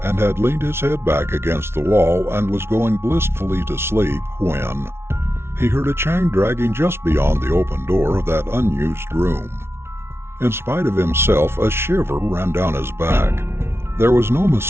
and had leaned his head back against the wall and was going blissfully to sleep when he heard a chain dragging just beyond the open door of that unused room. In spite of himself, a shiver ran down his back. There was no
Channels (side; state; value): left; late; 0.12 ms